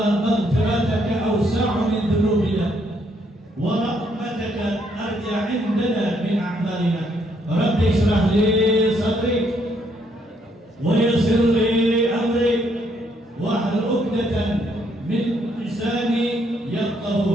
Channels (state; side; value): normal; both; correlation 0.71